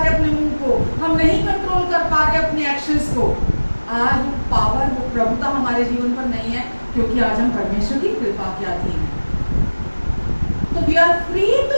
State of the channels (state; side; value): inverted; both; correlation -1.00